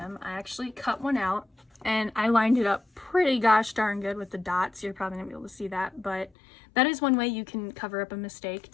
I actually cut one out and I lined it up pretty gosh darn good with the dots. You're probably gonna be able to see that, but that is one way you can cover up a mistake.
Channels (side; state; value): right; drops out; at 6.3 s